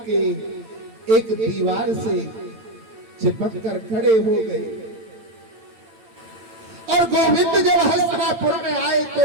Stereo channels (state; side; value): late; left; 8.9 ms